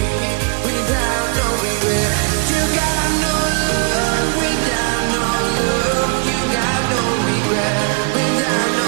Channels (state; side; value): quieter; left; 34.9 dB